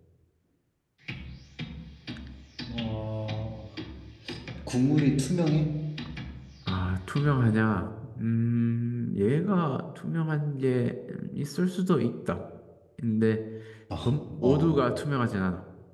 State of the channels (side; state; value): both; identical; correlation 1.00